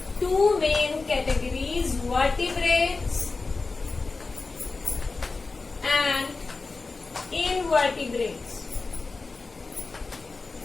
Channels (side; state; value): right; quieter; 3.9 dB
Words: two main categories, vertebrates and invertebrates.